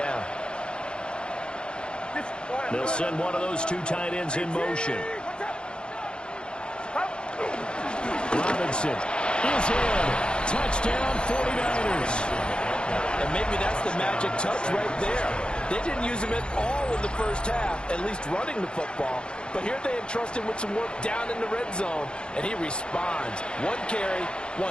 They'll send one of those 2 tight ends in motion. Robinson is in. Touchdown 49ers. And maybe that's the magic touch right there. They didn't use him at all in the first half, at least running the football. But here they entrust him with some work down in the red zone, and he responds. 1 carry,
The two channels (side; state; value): right; late; 0.052 ms